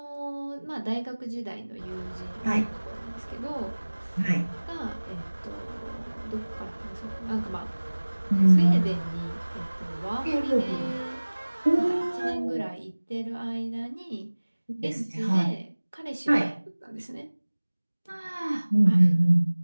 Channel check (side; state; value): both; inverted; correlation -1.00